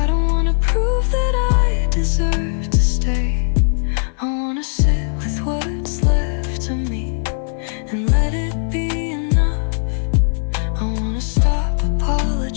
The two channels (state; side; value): silent; right; digital silence